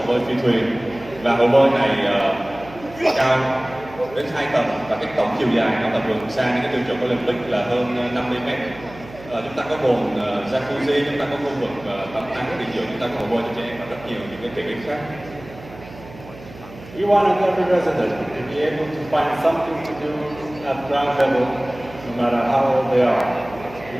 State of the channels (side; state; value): right; noise; hum, 18 dB below the sound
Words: bơi phi thuyền, và hồ bơi này cao đến 2 tầng, và cái tổng chiều dài nó là vượt xa những cái tiêu chuẩn Olympic là hơn 50 mét. Chúng ta có bồn jacuzzi, chúng ta có khu vực tắm nắng nghỉ dưỡng, chúng ta có hồ bơi cho trẻ em và rất nhiều những cái tiện ích khác. We wanted every resident to be able to find something to do at ground level, no matter how old they are.